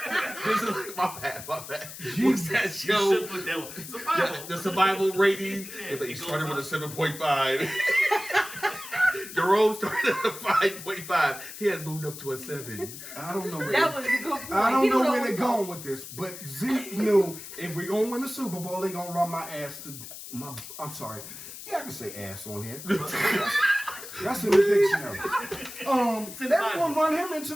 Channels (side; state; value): left; noise; hiss, 12 dB below the sound